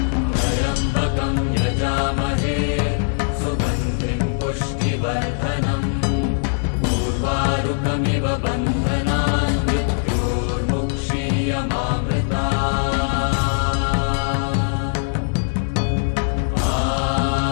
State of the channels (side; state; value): right; silent; digital silence